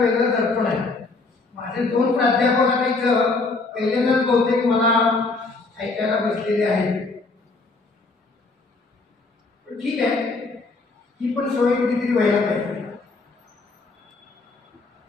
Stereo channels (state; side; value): quieter; right; 3.7 dB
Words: दर्पण आहे. माझे दोन प्राध्यापक आता इथं पहिल्यांदाच बहुतेक मला ऐकायला बसलेले आहेत. पण ठीक आहे, ही पण सवय कधीतरी व्हायला पाहिजे.